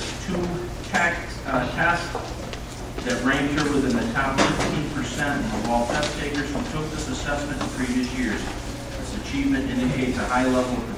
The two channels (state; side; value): identical; both; correlation 1.00